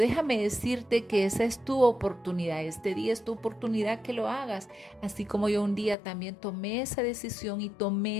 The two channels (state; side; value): drops out; right; at 6.0 s